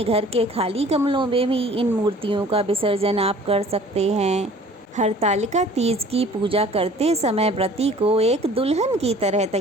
घर के खाली गमलों में भी इन मूर्तियों का विसर्जन आप कर सकते हैं। हरतालिका तीज की पूजा करते समय व्रती को एक दुल्हन की तरह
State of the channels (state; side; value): normal; both; correlation 0.50